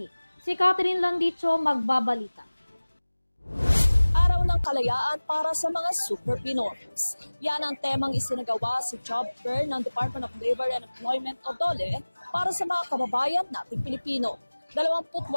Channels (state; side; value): inverted; both; correlation -1.00